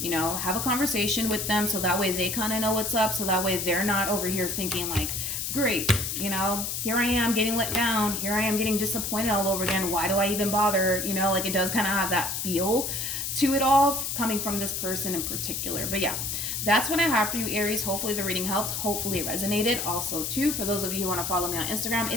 Have a conversation with them so that way they kind of know what's up. So that way they're not over here thinking like great. You know, here I am getting let down. Here I am getting disappointed all over again. Why do I even bother? You know, like it does kind of have that feel to it all coming from this person in particular. But yeah, that's what I have for you, Aries. Hopefully the reading helped. Hopefully it resonated. Also, too, for those of you who want to follow me on Instagram,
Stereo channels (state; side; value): noise; left; hiss, 3 dB below the sound